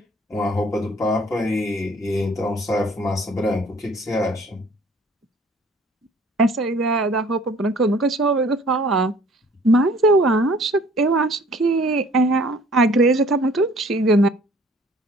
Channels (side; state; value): both; normal; correlation 0.54